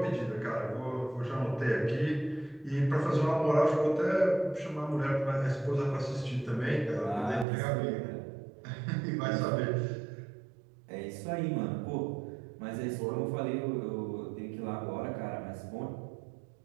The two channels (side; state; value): left; drops out; at 7.5 s